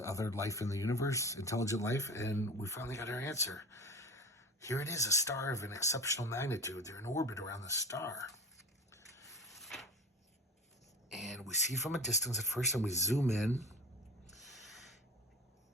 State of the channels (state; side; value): normal; both; correlation 0.33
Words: life in the universe, intelligent life, and we finally got our answer. Here it is, a star of an exceptional magnitude. They're in orbit around the star. And we see from a distance at first, and we zoom in,